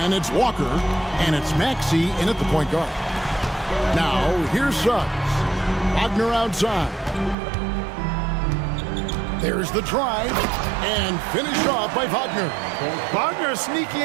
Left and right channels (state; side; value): drops out; left; at 7.4 s